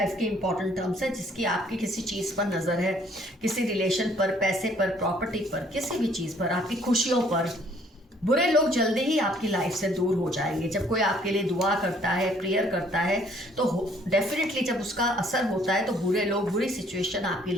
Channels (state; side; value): normal; both; correlation 0.61